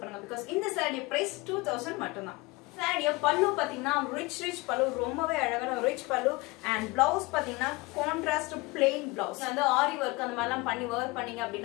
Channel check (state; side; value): quieter; right; 23.7 dB